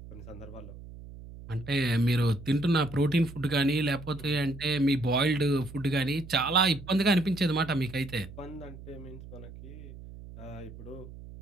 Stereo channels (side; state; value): right; noise; hum, 15 dB below the sound